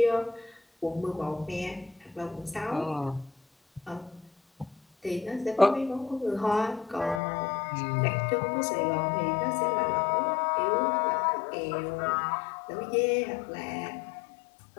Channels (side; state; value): right; drops out; at 7.2 s